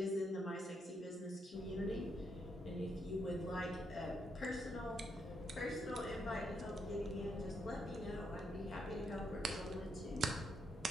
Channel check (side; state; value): both; normal; correlation 0.78